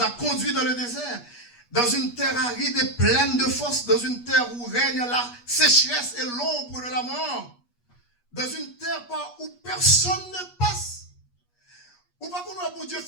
a conduits dans le désert, dans une terre aride et pleine de fosses, dans une terre où règne la sécheresse et l'ombre de la mort, dans une terre où personne ne passe. Ou pas qu'on a pour Dieu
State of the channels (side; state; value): right; late; 8.3 ms